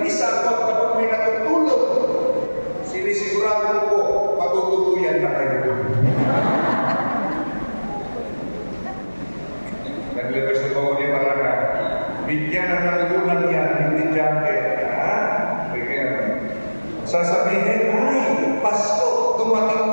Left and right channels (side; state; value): both; inverted; correlation -1.00